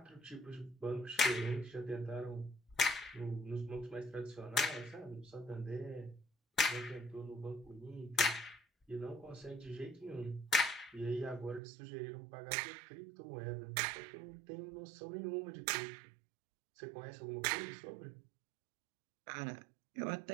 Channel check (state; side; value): drops out; left; at 11.6 s